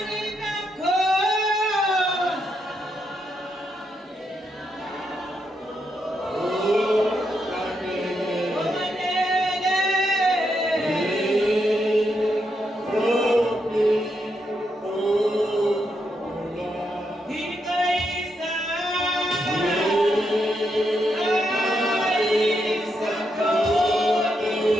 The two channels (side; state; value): both; normal; correlation 0.81